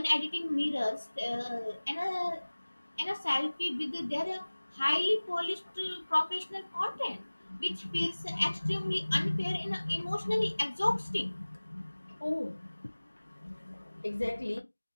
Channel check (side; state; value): both; inverted; correlation -1.00